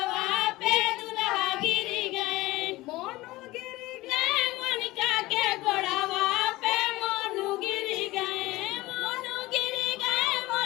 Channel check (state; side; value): quieter; right; 19.1 dB